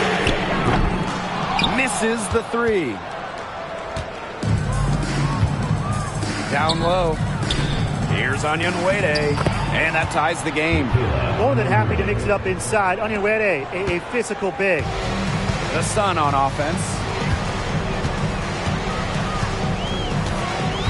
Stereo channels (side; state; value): both; identical; correlation 1.00